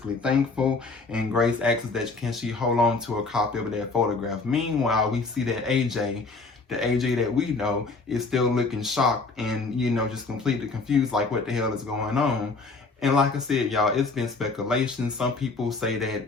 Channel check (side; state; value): right; quieter; 3.9 dB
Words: thankful. And Grace asks that, can she hold on to a copy of that photograph? Meanwhile, we see that AJ, the AJ that we know, is still looking shocked and, just completely confused, like what the hell is going on. And like I said, y'all, it's been speculation. Some people say